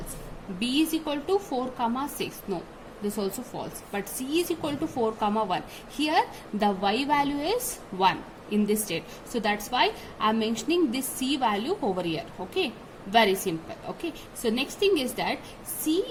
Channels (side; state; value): both; identical; correlation 1.00